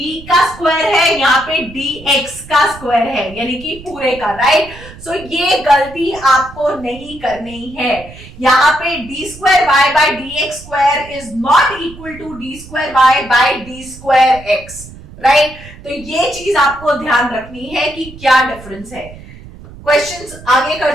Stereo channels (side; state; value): right; noise; rumble, 18 dB below the sound